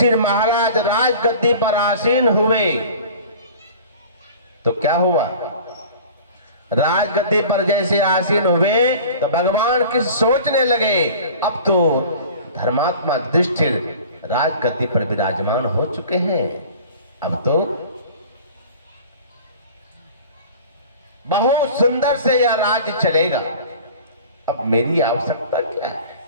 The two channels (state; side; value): inverted; both; correlation -0.42